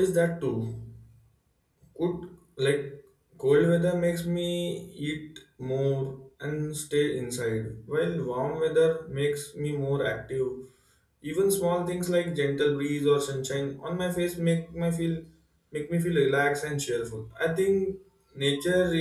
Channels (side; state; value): both; identical; correlation 1.00